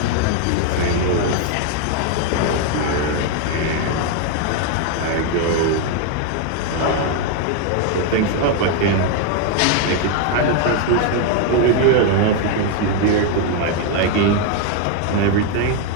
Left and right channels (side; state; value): both; different; correlation 0.01